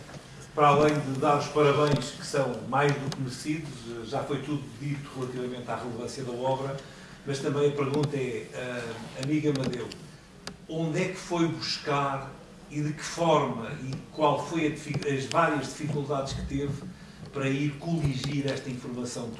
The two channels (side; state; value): both; identical; correlation 1.00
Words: para além de dar os parabéns, que são mais do que merecidos, já foi tudo dito relativamente à relevância da obra, mas também a pergunta é, amigo Amadeu, onde é que foi buscar e de que forma e qual foi as várias dificuldades que teve para ir coligir esta informação